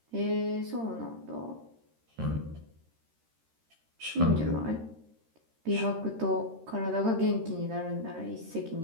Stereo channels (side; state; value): left; late; 13 ms